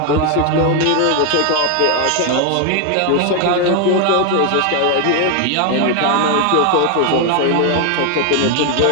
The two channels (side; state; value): both; different; correlation 0.01